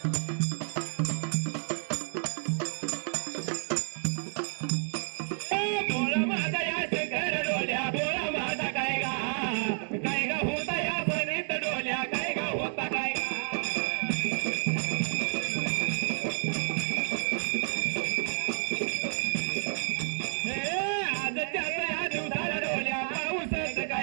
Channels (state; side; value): silent; left; digital silence